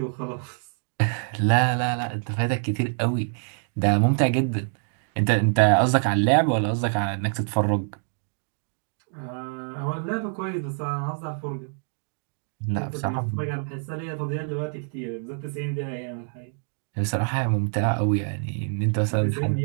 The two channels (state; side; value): silent; left; 58 dB below the other